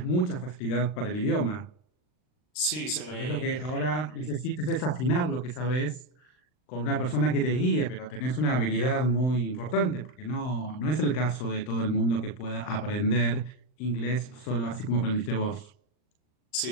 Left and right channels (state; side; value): late; right; 39 ms